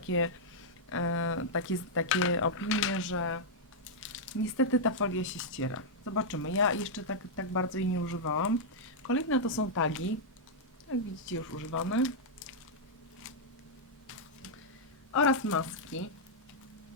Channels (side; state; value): both; normal; correlation -0.06